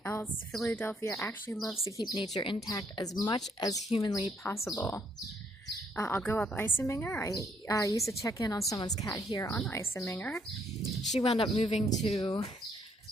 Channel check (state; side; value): normal; both; correlation 0.69